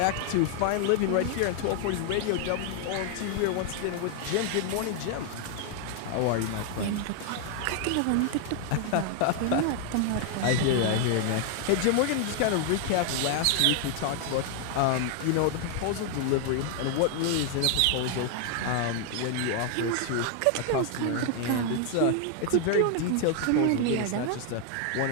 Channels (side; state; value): both; different; correlation 0.00